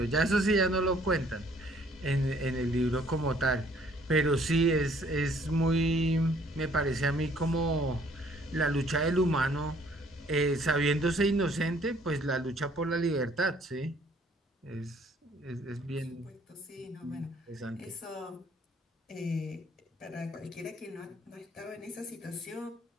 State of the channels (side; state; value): both; normal; correlation 0.61